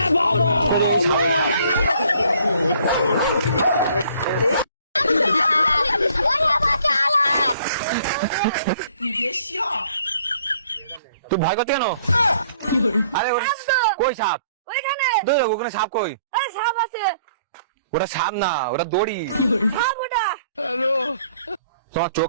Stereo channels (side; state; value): both; inverted; correlation -0.61